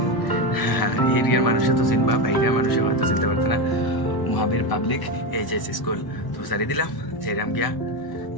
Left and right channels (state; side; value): late; right; 1.0 ms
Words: এরিয়ার মানুষে তো চিনবা, বাইরের মানুষে হয়তো চিনতে পারতো না। মহাবীর পাবলিক এইচএস স্কুল। তো সারি দিলাম যেরাম গিয়া।